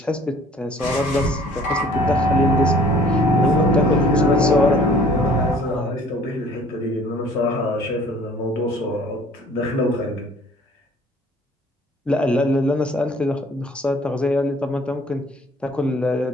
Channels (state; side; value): normal; both; correlation 0.54